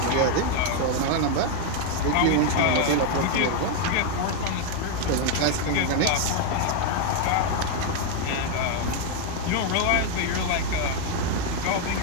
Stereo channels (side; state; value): both; different; correlation 0.01